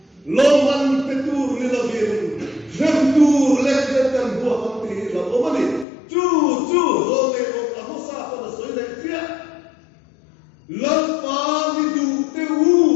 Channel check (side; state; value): right; drops out; at 5.9 s